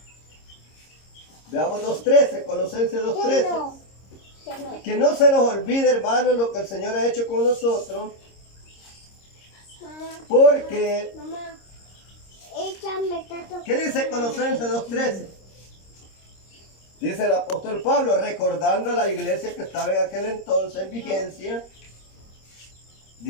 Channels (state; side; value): late; right; 26 ms